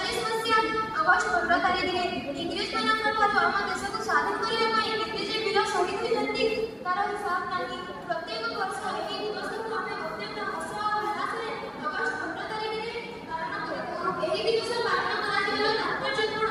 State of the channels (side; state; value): both; identical; correlation 1.00